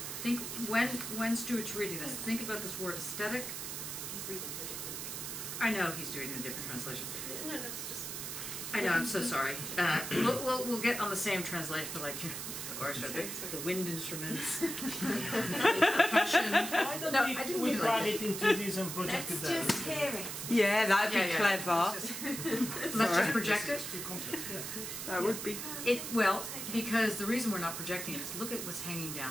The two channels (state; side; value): noise; right; hiss, 6 dB below the sound